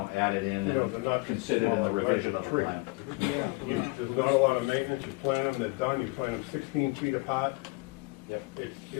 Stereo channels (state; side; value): quieter; right; 26.9 dB